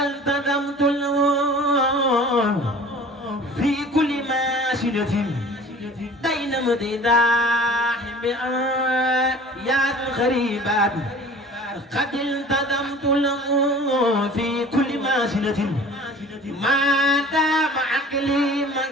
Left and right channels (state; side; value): normal; both; correlation 0.44